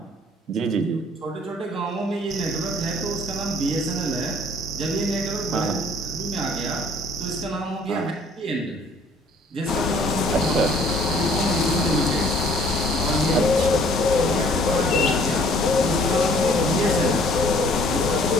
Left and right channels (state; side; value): normal; both; correlation 0.57